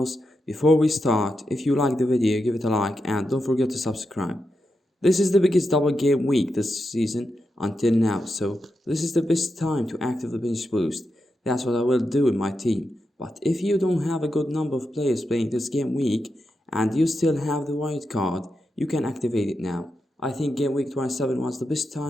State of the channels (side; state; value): both; normal; correlation 0.87